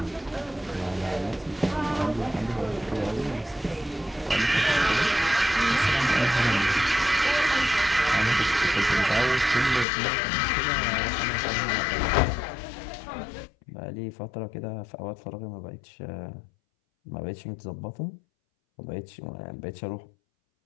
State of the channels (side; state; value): right; drops out; at 9.9 s